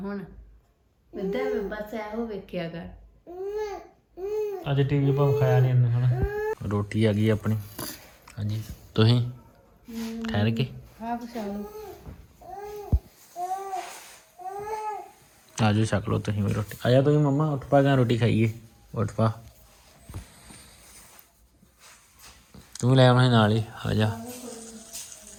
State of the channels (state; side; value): identical; both; correlation 1.00